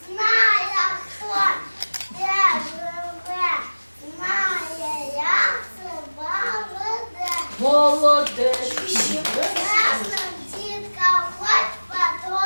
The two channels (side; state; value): both; inverted; correlation -1.00